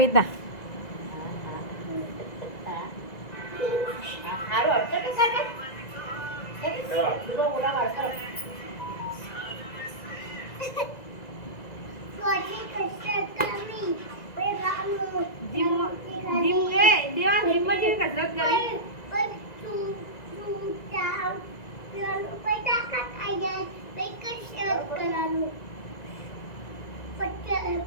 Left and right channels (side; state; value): right; late; 1.9 ms